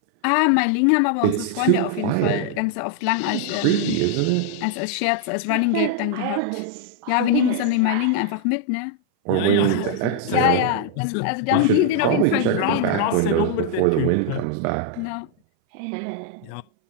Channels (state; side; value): different; both; correlation 0.00